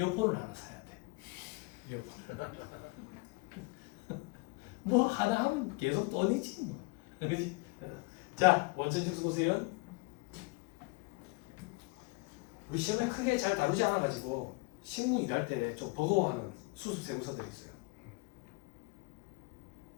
하나 사야 돼. 이어폰을. 뭐 하나 하면 계속 돈이지 뭐. 그렇지? 자, 원천징수 보세요. 우리 시험에 크게 잘 다루지 않아가지고 실무 일할 때 좀 버거워하는 수습 세무서들이 있어요.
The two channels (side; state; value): right; quieter; 27.2 dB